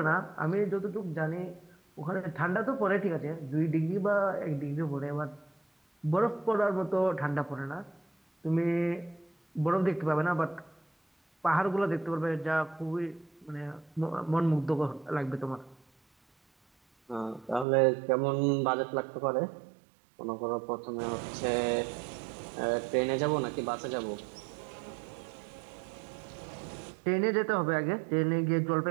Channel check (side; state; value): left; drops out; at 17.7 s